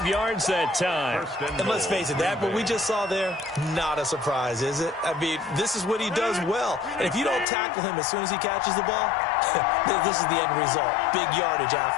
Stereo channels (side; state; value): right; drops out; at 7.5 s